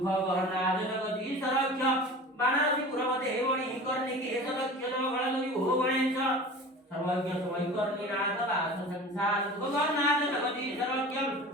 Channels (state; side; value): normal; both; correlation 0.37